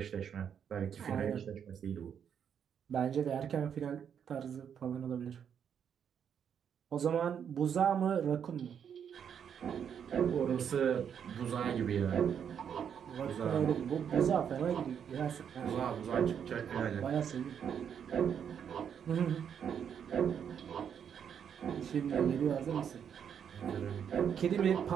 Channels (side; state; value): left; quieter; 8.1 dB